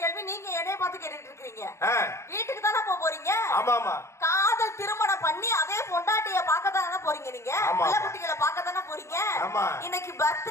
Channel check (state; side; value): late; right; 0.13 ms